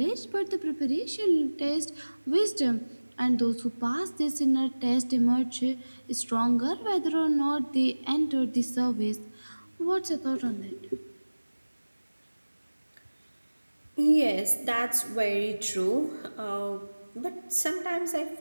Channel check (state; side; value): inverted; both; correlation -1.00